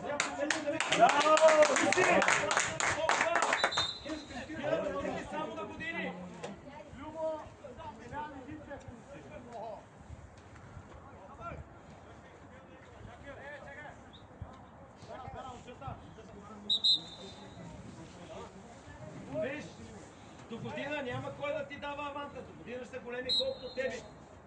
сега помете да ви... Браво! Толкова! Само на години! Любо! Виж, до година няма кой да ти дава аванта. До година ще са големи колкото тебе.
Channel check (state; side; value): identical; both; correlation 1.00